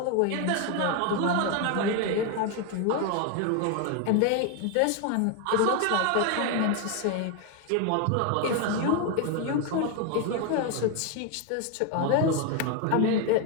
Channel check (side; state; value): both; different; correlation 0.01